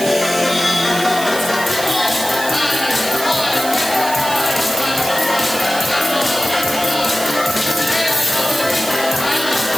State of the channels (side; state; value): right; noise; hiss, 8 dB below the sound